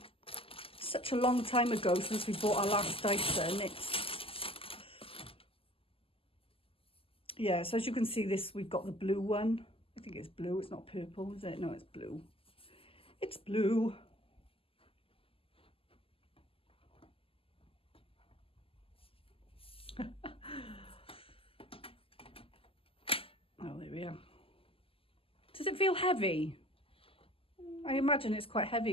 Such a long time ago since we bought our last Dyson. Yeah, so as you can see, we've got the blue one. I think it's blue, it's not purple, is it? No, it's blue. It's blue. Oh, there we are. Does it feel heavy? I imagine it's quite heavy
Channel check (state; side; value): late; right; 0.26 ms